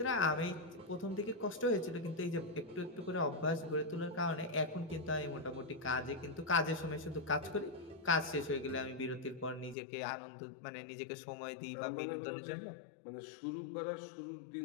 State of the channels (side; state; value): right; drops out; at 9.8 s